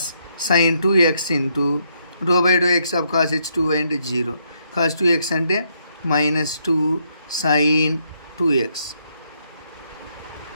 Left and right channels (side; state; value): both; inverted; correlation -0.75